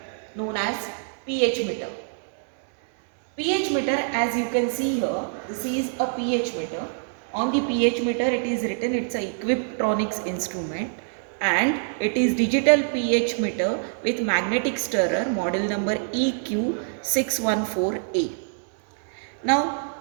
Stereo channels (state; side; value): silent; left; digital silence